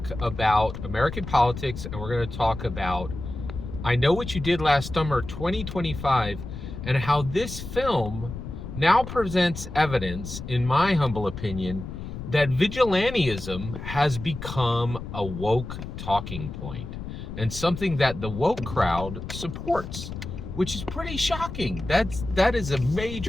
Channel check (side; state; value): left; noise; rumble, 9 dB below the sound